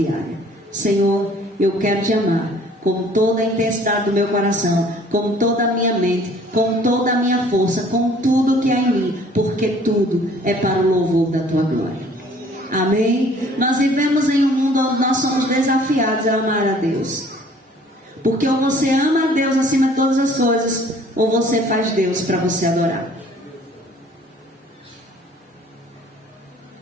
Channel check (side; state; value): both; normal; correlation 0.55